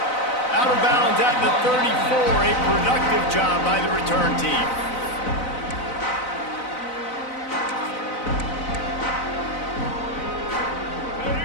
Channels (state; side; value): late; right; 4.0 ms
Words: Out of bounds at the 34, a productive job by the return team.